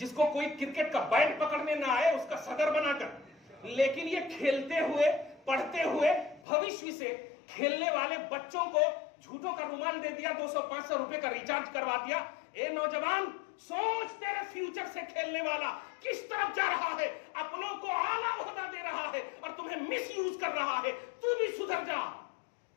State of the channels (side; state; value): right; drops out; at 6.5 s